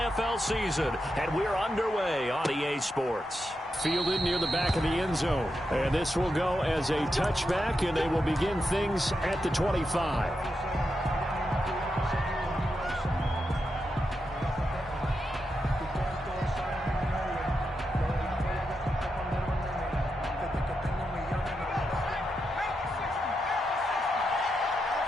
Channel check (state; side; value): normal; both; correlation 0.86